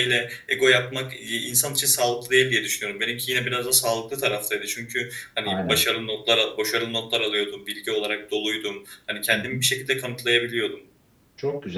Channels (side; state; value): both; identical; correlation 1.00